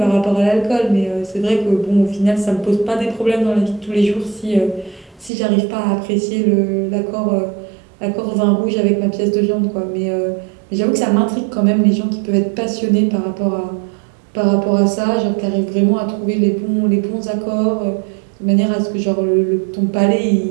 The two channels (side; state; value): left; drops out; at 5.3 s